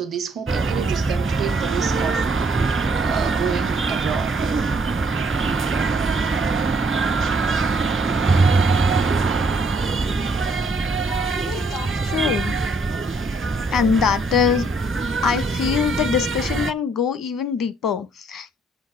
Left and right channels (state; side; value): normal; both; correlation 0.67